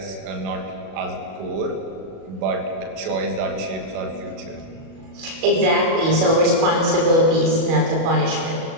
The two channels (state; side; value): late; left; 37 ms